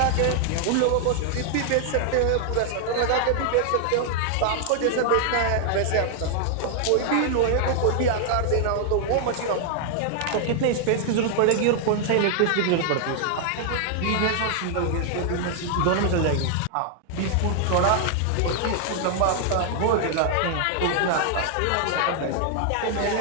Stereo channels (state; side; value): different; both; correlation 0.00